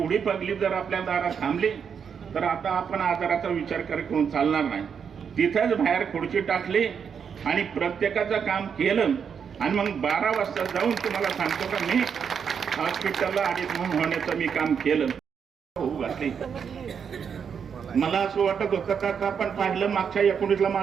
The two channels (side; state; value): left; quieter; 7.0 dB